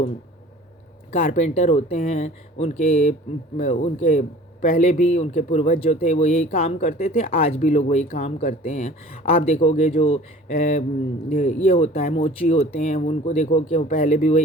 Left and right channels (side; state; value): both; normal; correlation 0.46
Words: कारपेंटर होते हैं, उनके पहले भी उनके पूर्वज जो थे वो यही काम करते थे, आज भी लोग वही काम करते हैं। आप देखोगे जो ये होता है मोची होते हैं, उनको देखो कि वो पहले भी